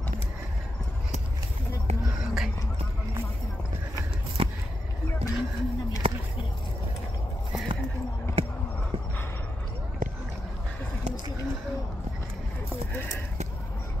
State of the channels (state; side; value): normal; both; correlation 0.86